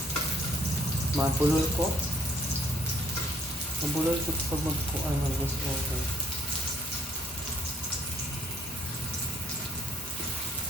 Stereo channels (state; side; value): normal; both; correlation 0.64